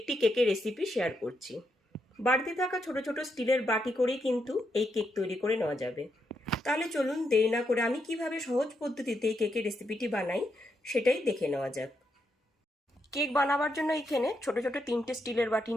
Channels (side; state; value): both; normal; correlation 0.81